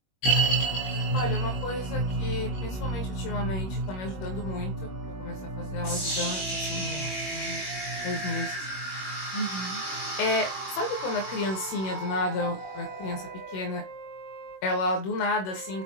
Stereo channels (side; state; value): right; late; 21 ms